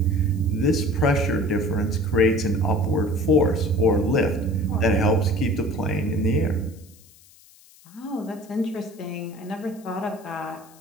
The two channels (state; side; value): noise; left; hiss, 26 dB below the sound